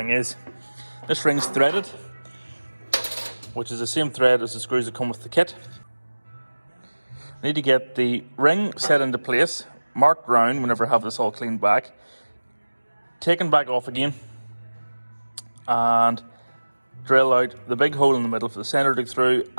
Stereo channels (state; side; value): inverted; both; correlation -1.00